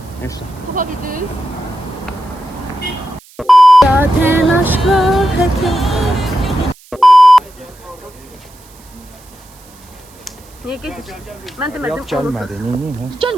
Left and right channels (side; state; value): right; noise; hiss, 25 dB below the sound